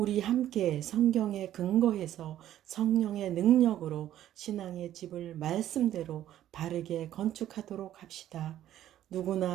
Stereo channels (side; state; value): left; quieter; 12.2 dB